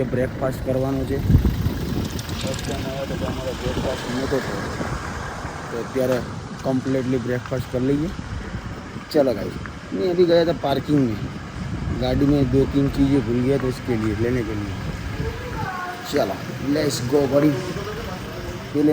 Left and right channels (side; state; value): both; identical; correlation 1.00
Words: કે બ્રેકફાસ્ટ કરવાનો છે. ફર્સ્ટ ટાઈમ આવ્યા તો અમારો બ્રેકફાસ્ટ નહોતો થયો, તો અત્યારે कम्प्लीटली ब्रेकफास्ट कर लीजिए. चलो गाइस, मैं अभी गया था पार्किंग में, गाड़ी में 2-3 चीज़ें भूल गया तो इसके लिए लेने के लिए. चलो लेट्स गो बड़ी. पहले